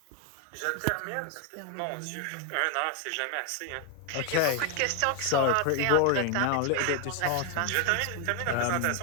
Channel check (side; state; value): both; different; correlation 0.01